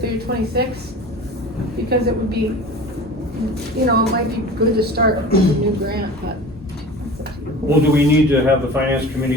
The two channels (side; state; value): both; normal; correlation 0.37